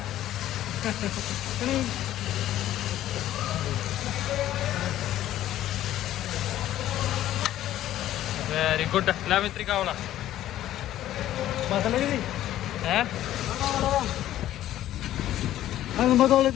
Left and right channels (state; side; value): quieter; right; 13.1 dB